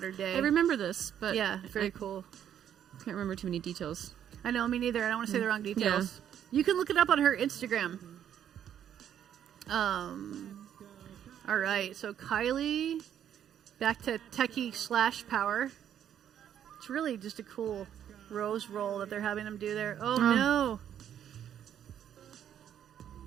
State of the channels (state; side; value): quieter; left; 9.8 dB